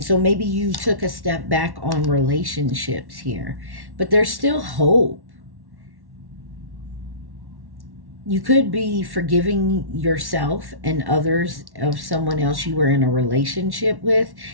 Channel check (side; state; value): left; late; 1.1 ms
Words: so maybe you took a step back on relationships here, but there's still hope. You could be forgiving yourself and others of someone else you were in a relationship with,